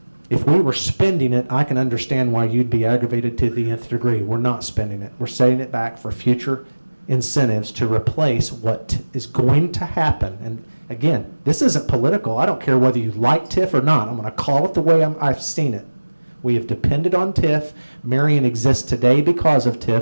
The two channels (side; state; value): both; inverted; correlation -1.00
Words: If we were spending it, I can understand why you'd be aggravated to the nth degree. We're not spending it. We're setting it back for future incentives to replace what is going to happen. And again, this isn't political. I don't care whether you like TIF or not. I'm going to call it the way I've seen it. We have depended on TIF. Marion exists today because of